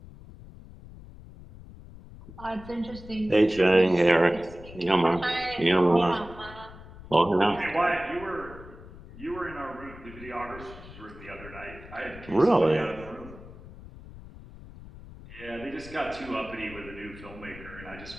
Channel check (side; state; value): left; noise; rumble, 17 dB below the sound